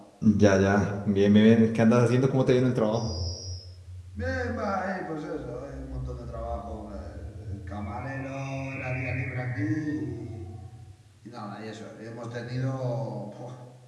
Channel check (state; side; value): identical; both; correlation 1.00